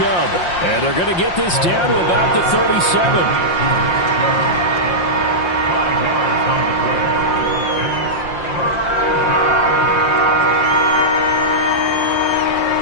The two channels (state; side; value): late; right; 5.7 ms